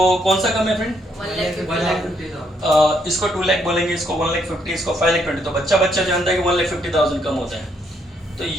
कौन सा कम है फ्रेंड? 1,50,000 इसको 2 लाख बोलेंगे, इसको 1,50,000, इसको 5,20,000। तो बच्चा जानता है कि 1,50,000 कम होता है, तो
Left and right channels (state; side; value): normal; both; correlation 0.72